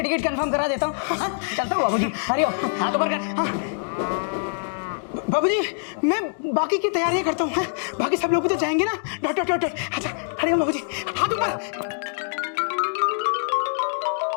टिकट कंफर्म करा देता हूँ। हाँ, चलता हूँ बाबूजी। हरिओम, हाथ ऊपर कर। हाँ। बाबूजी, मैं बाकी की तैयारियां करता हूँ। बाकी सब लोग भी तो जाएंगे ना। Dot dot dot dot. अच्छा, हरिओम बाबूजी, हाथ ऊपर।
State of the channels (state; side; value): silent; right; 62 dB below the other